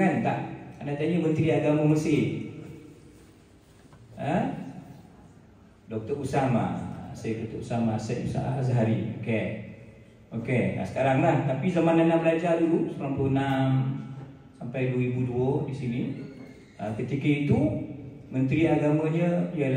Tak. Anda tanya Menteri Agama Mesir. Dr. Usama. Saya Dr. Usama Syed Azhari. Okey. Sekarang lah. Tapi zaman anda belajar dulu 96 sampai 2002 di sini. Ketika itu Menteri Agamanya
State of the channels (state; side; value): identical; both; correlation 1.00